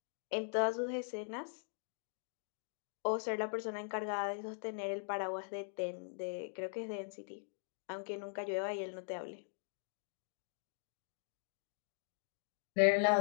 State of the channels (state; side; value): silent; right; digital silence